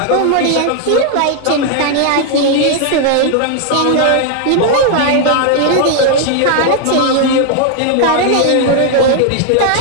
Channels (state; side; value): different; both; correlation 0.00